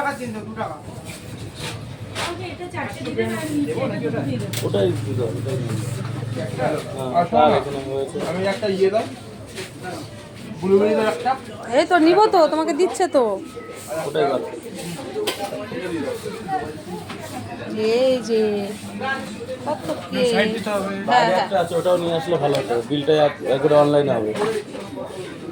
দিন তো 2 টাকা। ওকে এটা 4টে দিবেন আর নিচে এটা দুটো দিয়ে দেবেন। ওটাই দিতে হবে, ওটাই নিয়ে আমি একটা ইয়ে দাও ব্লুবেরি দাও একটা। এই তো নিব তো, তোমাকে দিচ্ছে তো। ওটাই ভালো। এই যে কত কেক। সাইড দিতে হবে। হ্যাঁ বাইরে হ্যাঁ একটা আছে, ওটাও নিয়ে আসলে ভালো হতো। বিলটা একবারে অনলাইনে হবে।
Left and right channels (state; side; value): identical; both; correlation 1.00